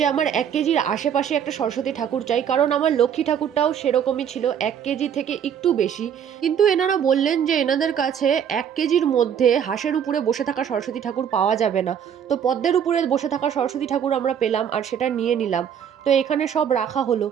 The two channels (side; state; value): left; quieter; 8.5 dB